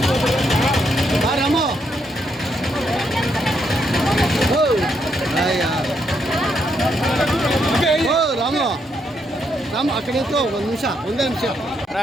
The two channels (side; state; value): both; normal; correlation 0.77